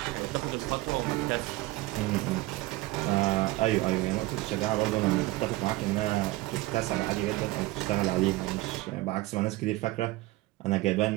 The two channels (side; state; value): left; quieter; 19.2 dB